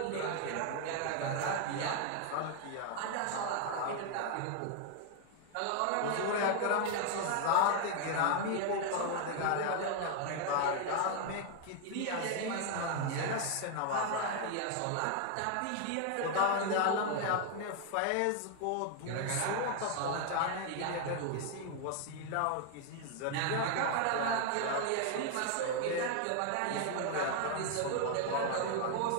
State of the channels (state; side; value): different; both; correlation 0.00